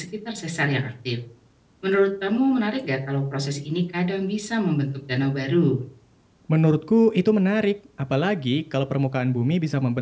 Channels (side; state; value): both; identical; correlation 1.00